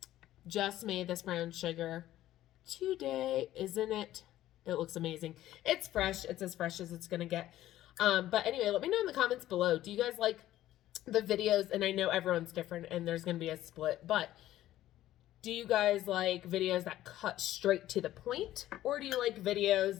just made this brown sugar today, isn't it? It looks amazing. It's fresh. It's as fresh as it's gonna get. But anyway, let me know in the comments below. Do you guys like the videos? And I know everyone's different and there's gonna be a split, but do you guys like videos that cut straight to the point? Or do you like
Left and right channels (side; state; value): right; quieter; 13.9 dB